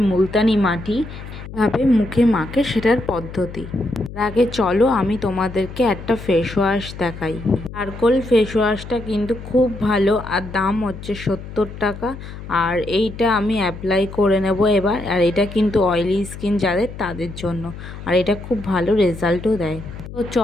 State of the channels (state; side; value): noise; left; hum, 12 dB below the sound